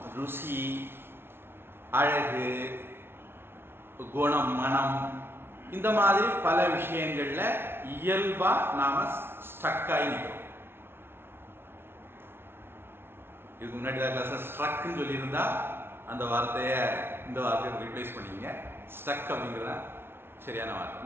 ருசி, அழகு, குணம், மனம், இந்த மாதிரி பல விஷயங்கள்ல இயல்பா நாம ஸ்ட்ரக்காகி நிற்கிறோம். இதுக்கு முன்னாடி கிளாஸ் ஸ்ட்ரக்னு சொல்லியிருந்தா அந்த வார்த்தையை இந்த வார்த்தையை ரீப்ளேஸ் பண்ணிங்க. ஸ்ட்ரக் அப்படிங்கிறத சரியான வார்த்தை.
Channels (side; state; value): left; late; 0.11 ms